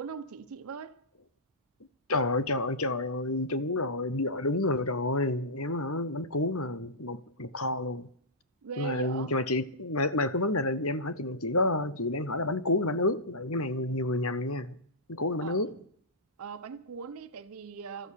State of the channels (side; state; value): both; normal; correlation -0.15